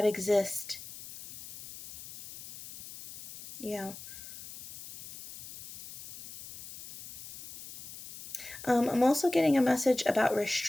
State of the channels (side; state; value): left; noise; hiss, 14 dB below the sound